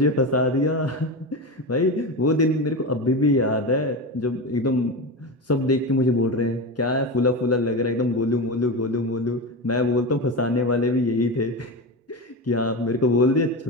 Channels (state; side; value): normal; both; correlation 0.21